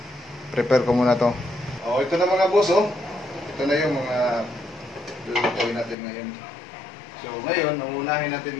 Prepare ko muna to. Oh, ito na mga boss, oh. Ito na yung mga lulutuin natin ngayon. So, ngayon, nauunahin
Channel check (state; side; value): drops out; right; at 6.0 s